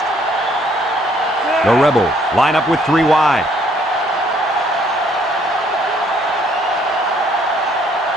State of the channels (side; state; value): both; normal; correlation 0.64